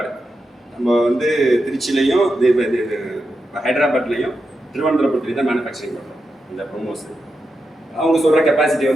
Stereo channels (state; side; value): normal; both; correlation 0.87